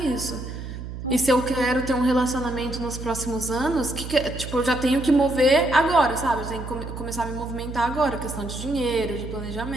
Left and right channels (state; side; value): noise; right; hum, 9 dB below the sound